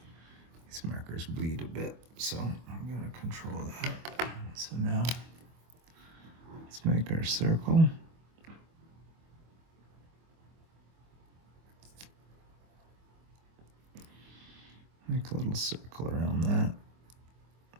These markers bleed a bit, so I'm going to control that. So now let's make our circle. Make a little circle around that.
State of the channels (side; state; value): left; late; 24 ms